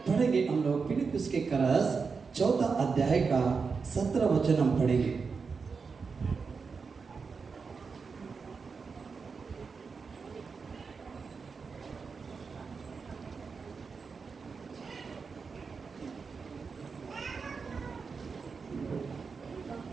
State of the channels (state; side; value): quieter; left; 5.1 dB